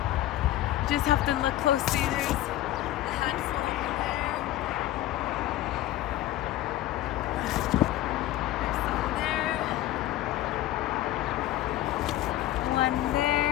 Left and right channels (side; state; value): right; quieter; 14.6 dB